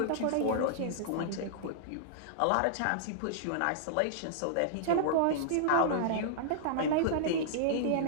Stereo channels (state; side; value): different; both; correlation -0.02